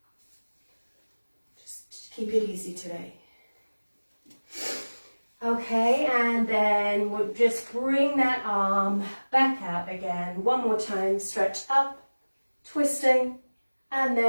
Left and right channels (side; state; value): both; inverted; correlation -1.00